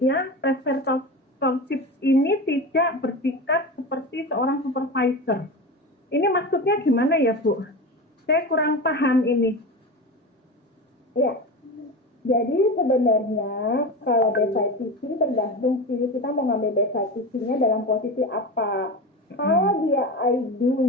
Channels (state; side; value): normal; both; correlation 0.26